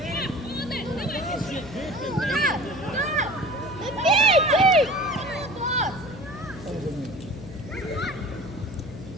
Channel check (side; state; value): left; noise; hum, 14 dB below the sound